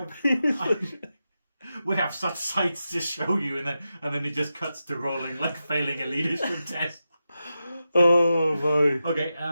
We have such sights to show you, and then it just cuts to rolling like failing a leadership test. Oh boy. Okay,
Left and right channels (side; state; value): both; inverted; correlation -0.90